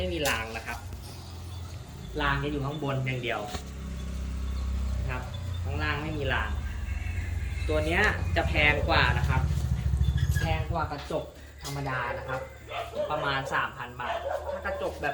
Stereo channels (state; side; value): identical; both; correlation 1.00